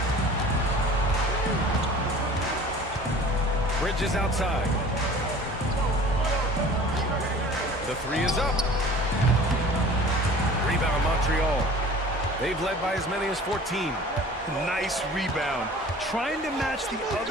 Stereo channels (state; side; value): normal; both; correlation 0.44